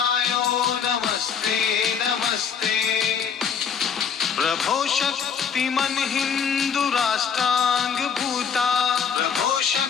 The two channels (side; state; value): right; quieter; 6.9 dB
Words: नमस्ते नमस्ते, प्रभो शक्तिमन् हिन्दु राष्ट्रांग भूता, प्रभो